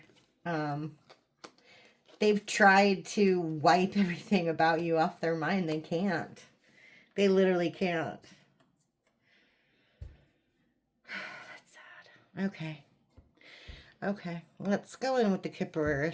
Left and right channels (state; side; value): identical; both; correlation 1.00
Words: They've tried to wipe everything about you off their mind. They can't. They literally can't. That's sad. Okay. Okay. Let's go in with the